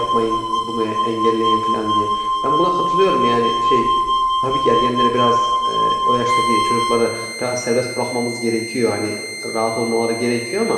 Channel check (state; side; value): identical; both; correlation 1.00